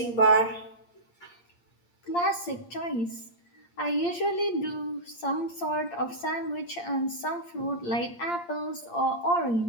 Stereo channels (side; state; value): right; late; 8.6 ms